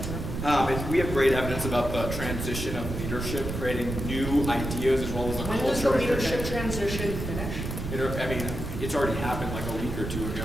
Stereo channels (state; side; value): noise; right; rumble, 5 dB below the sound